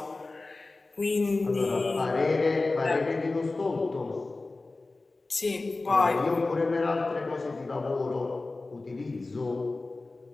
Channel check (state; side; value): quieter; right; 3.3 dB